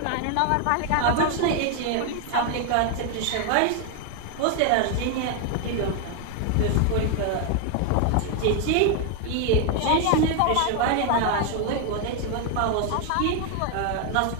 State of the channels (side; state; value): both; different; correlation 0.01